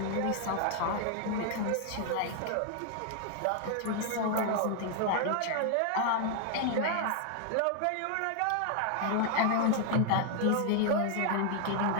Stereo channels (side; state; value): both; different; correlation 0.00